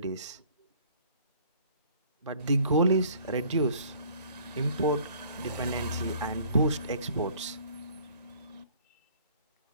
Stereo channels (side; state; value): both; inverted; correlation -0.55